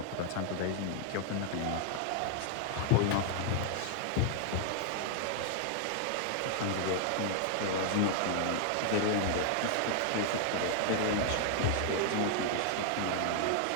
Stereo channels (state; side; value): different; both; correlation 0.00